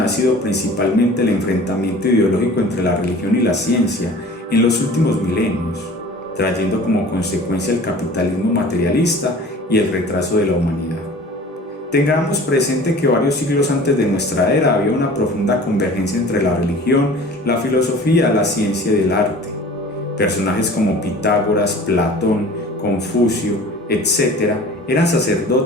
ha sido principalmente el enfrentamiento ideológico entre la religión y la ciencia en los últimos milenios, trayendo como consecuencia el capitalismo materialista y el retraso de la humanidad. Tengamos presente que varios siglos antes de nuestra era había una profunda convergencia entre la religión, la filosofía, la ciencia y el arte. Personajes como Pitágoras, Platón, Confucio, etc., eran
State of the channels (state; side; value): normal; both; correlation 0.44